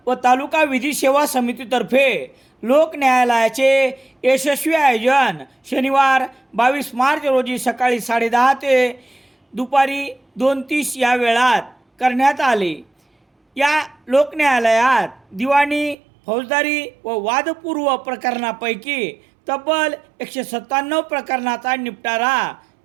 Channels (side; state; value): left; drops out; at 16.0 s